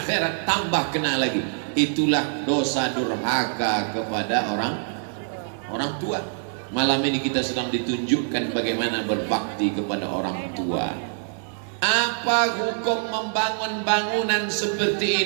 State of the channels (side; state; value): left; silent; digital silence